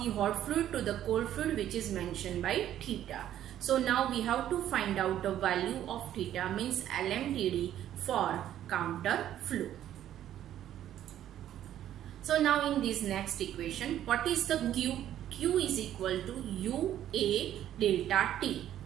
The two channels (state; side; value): quieter; left; 11.6 dB